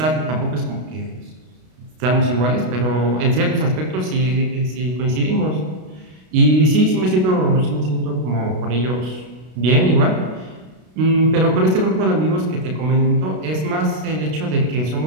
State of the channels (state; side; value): late; left; 32 ms